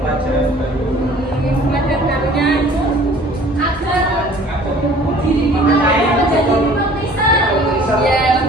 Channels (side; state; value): both; normal; correlation 0.51